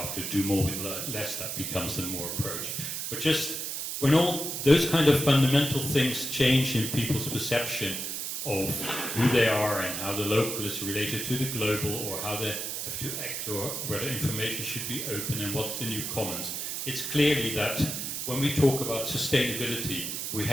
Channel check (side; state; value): right; noise; hiss, 4 dB below the sound